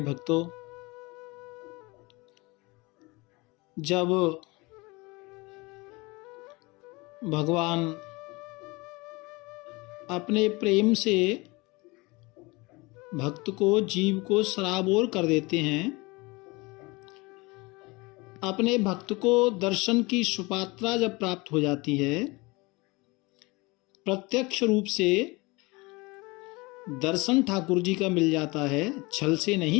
भक्तों, जब भगवान अपने प्रेम से भक्त को, जीव को सराबोर कर देते हैं, अपने भक्त को दर्शन की सुपात्रा जब प्राप्त हो जाती है, प्रत्यक्ष रूप से दर्शन ठाकुर जी का मिल जाता है, छल से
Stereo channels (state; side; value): quieter; right; 24.6 dB